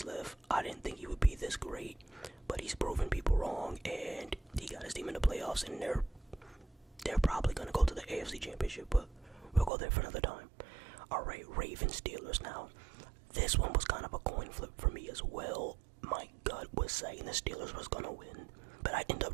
left, I didn't think he would be this great. But he's proven people wrong, and he got his team in the playoffs, and they're probably going to go to the AFC Championship, but we'll go there for another time. Alright, Ravens Steelers now. This one was kind of a coin flip for me as well. My gut was saying the Steelers was going to win, but I ended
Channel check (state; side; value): drops out; left; at 9.7 s